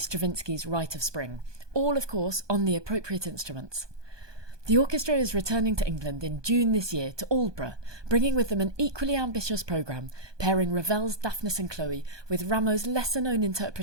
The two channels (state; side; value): late; left; 1.2 ms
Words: Rite of Spring, all, of course, on the appropriate instruments. The orchestra is returning to England in June this year to Aldborough, bringing with them an equally ambitious programme, pairing Ravel's Daphnis and Chloe with Rameau's lesser-known